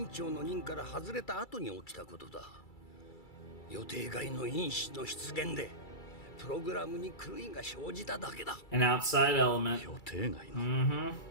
長の任から外れた後に起きたことだ。予定外の因子の出現でプログラムに狂いが生じただけだ。 An outside element. 予定外の Mm-hmm.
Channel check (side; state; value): right; late; 2.3 ms